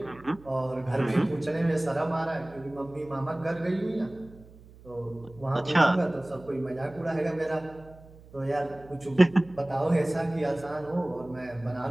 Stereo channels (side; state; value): right; noise; hum, 22 dB below the sound